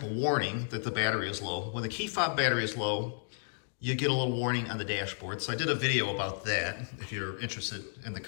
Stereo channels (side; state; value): right; silent; digital silence